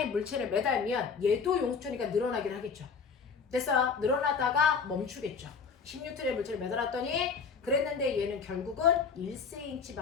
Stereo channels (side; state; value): right; quieter; 5.6 dB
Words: 물체를 매달면 얘도 용수철이니까 늘어나긴 하겠죠. 됐어? 늘어나다가 멈추겠죠. 10N의 물체를 매달았더니 그랬는데 얘는 결국은